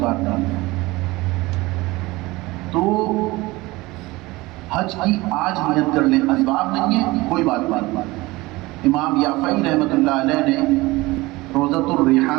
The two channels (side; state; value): left; quieter; 20.9 dB